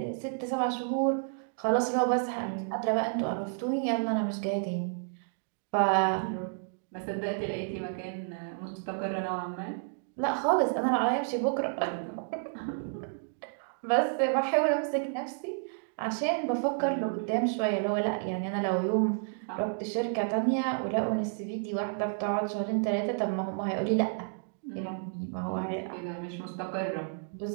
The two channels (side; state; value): left; silent; digital silence